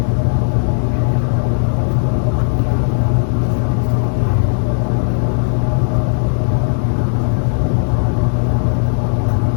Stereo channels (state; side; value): silent; right; digital silence